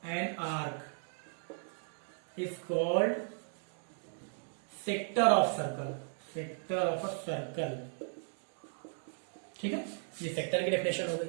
an arc is called sector of circle, sector of a circle, ठीक है। ये सेक्टर की डेफिनेशन हो गई,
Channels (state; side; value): silent; left; 54 dB below the other